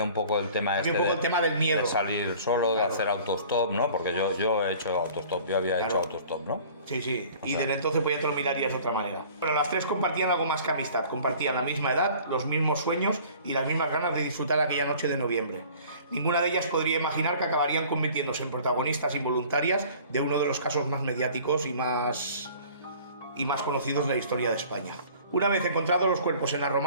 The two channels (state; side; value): inverted; both; correlation -0.48